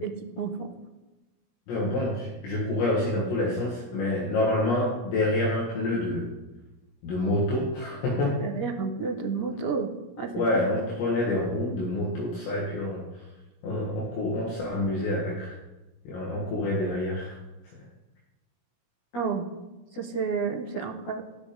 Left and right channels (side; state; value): right; late; 17 ms